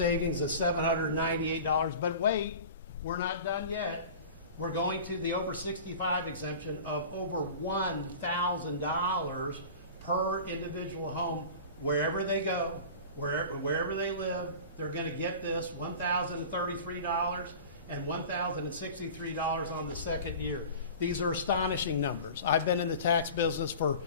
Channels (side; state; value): both; inverted; correlation -0.37